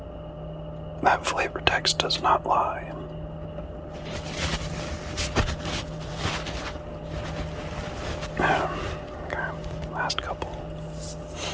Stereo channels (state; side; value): identical; both; correlation 1.00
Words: That flavor text does not lie. Okay, last couple.